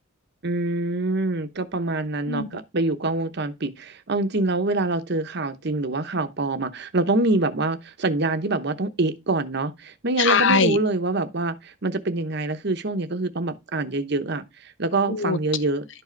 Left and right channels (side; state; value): both; normal; correlation 0.15